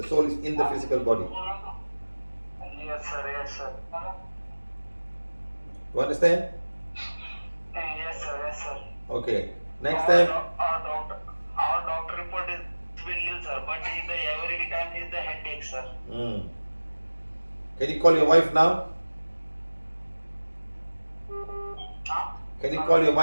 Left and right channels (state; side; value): inverted; both; correlation -1.00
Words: soul is in the physical body. Yes, sir. Yes, sir. You understand? Yes, sir. Yes, sir. Okay. Next time. Our doctor report is will nil, sir. But every time is the headache, sir. Can you call your wife now? Can you call your